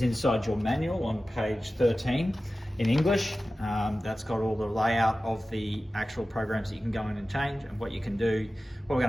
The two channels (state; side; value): normal; both; correlation 0.95